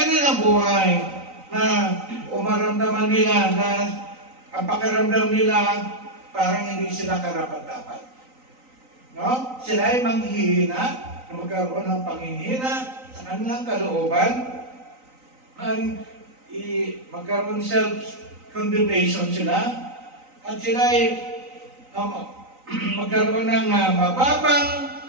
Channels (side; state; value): left; late; 3.9 ms